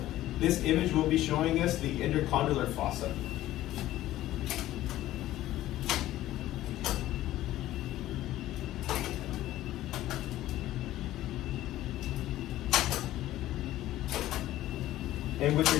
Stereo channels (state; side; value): quieter; right; 14.6 dB